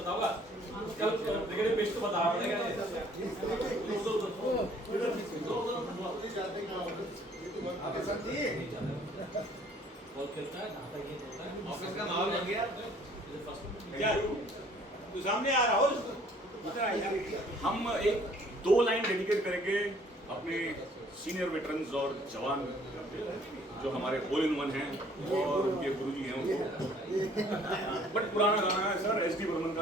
होगा। कल क्रिकेट पेश तो बता रहा था ऑफिस का माहौल बन गया। क्या तू सामने आ रहा हो? हम एक 2 लाइन डेडिकेट करेंगे अपने सीनियर वेटरन्स और जवान जो हमारे होल इन वन हैं और उनके गुरुजी हैं उनको। बट पुराना गाना है सर SD बर्मन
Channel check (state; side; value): normal; both; correlation 0.58